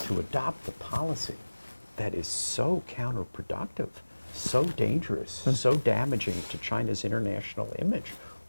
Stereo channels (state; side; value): inverted; both; correlation -1.00